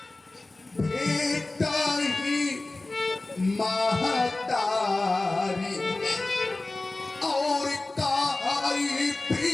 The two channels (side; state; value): right; quieter; 3.0 dB